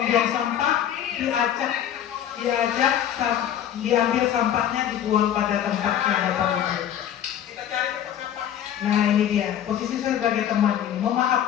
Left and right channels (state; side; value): quieter; right; 10.3 dB